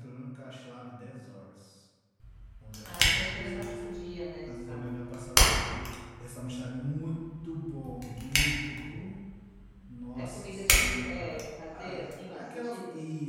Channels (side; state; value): both; identical; correlation 1.00